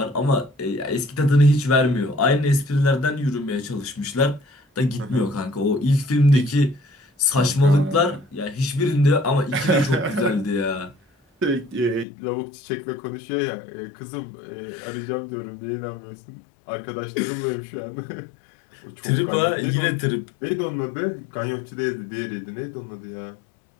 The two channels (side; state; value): right; drops out; at 12.1 s